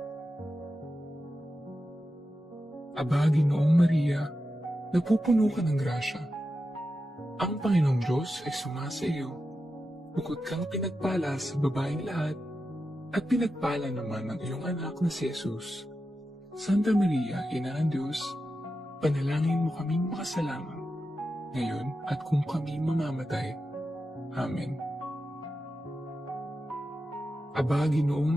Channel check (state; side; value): normal; both; correlation 0.90